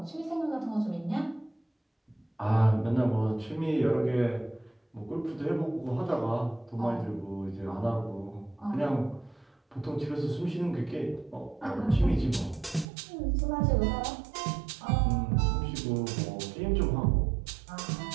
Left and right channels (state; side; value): drops out; left; at 12.9 s